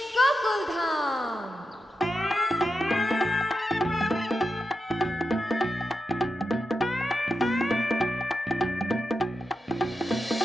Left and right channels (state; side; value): normal; both; correlation 0.88